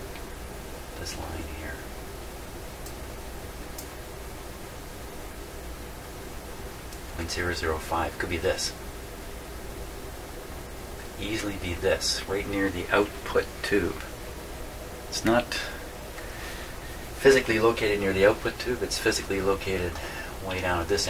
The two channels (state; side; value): identical; both; correlation 1.00